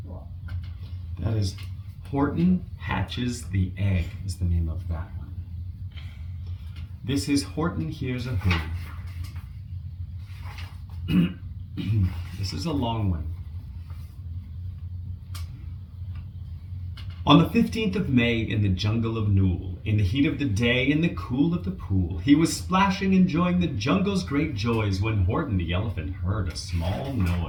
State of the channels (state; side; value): identical; both; correlation 1.00